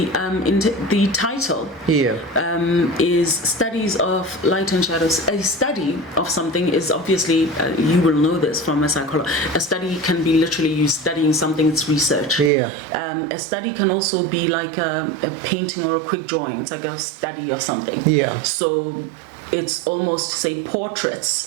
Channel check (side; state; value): left; drops out; at 12.5 s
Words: title is Studies of Light and Shadows. A study of something is obviously, you will know this from a psychologist, a study can be literally you studying something, it's research. A study can also be like a painting or a quick drawing. It's like a study of something. So it's almost, say,